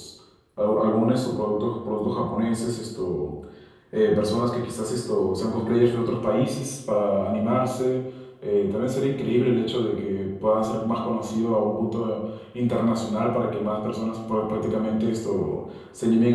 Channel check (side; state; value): both; identical; correlation 1.00